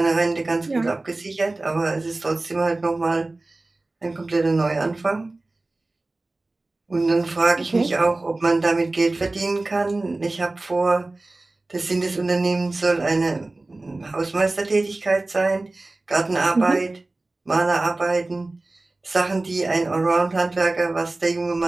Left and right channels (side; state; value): left; quieter; 3.0 dB